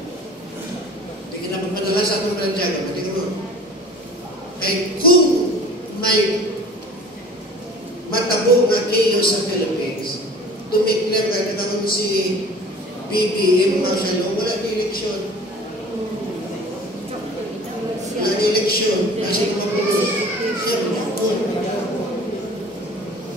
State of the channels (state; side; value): normal; both; correlation 0.45